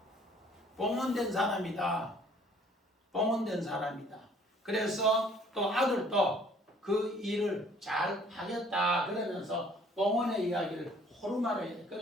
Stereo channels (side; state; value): both; normal; correlation 0.57